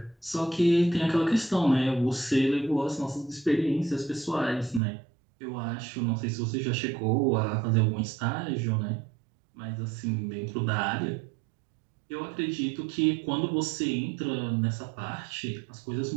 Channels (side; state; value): left; drops out; at 4.8 s